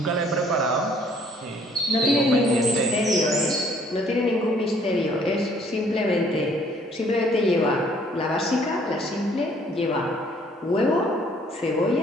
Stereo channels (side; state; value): both; normal; correlation 0.61